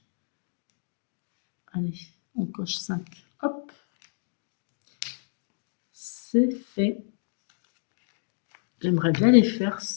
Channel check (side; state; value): right; silent; digital silence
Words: Allez, on coche 5. Hop. C'est fait. J'aimerais bien les faire,